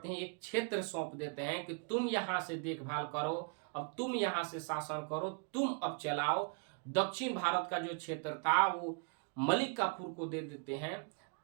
हैं? एक क्षेत्र सौंप देते हैं कि तुम यहां से देखभाल करो, अब तुम यहां से शासन करो, तुम अब चलाओ। दक्षिण भारत का जो क्षेत्र था वो मलिक काफूर को दे देते हैं।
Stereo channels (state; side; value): quieter; left; 37.9 dB